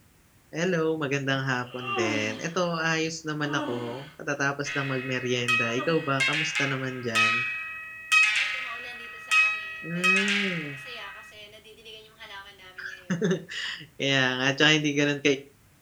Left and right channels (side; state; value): both; identical; correlation 1.00